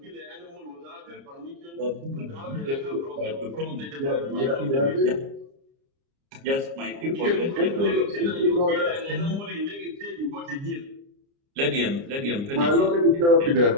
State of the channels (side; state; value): left; late; 29 ms